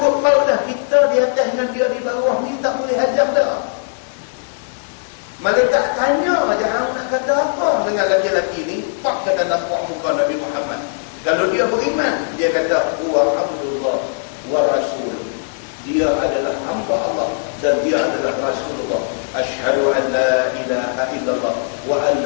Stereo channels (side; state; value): right; silent; digital silence